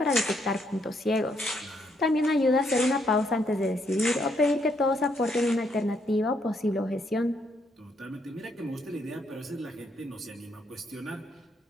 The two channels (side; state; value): both; normal; correlation 0.73